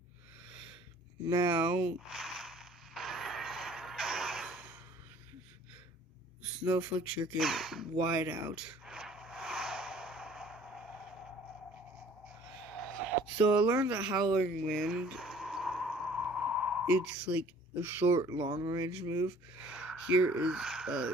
Now, Snowflake Shuriken wide out. So I learned that Howling Wind, it's like a short, long-range move. Here is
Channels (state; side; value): normal; both; correlation 0.52